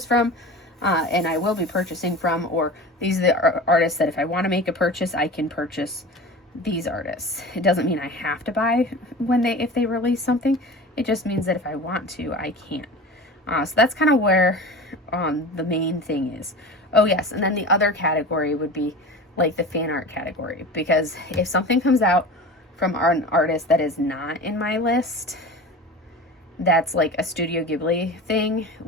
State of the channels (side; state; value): both; normal; correlation 0.34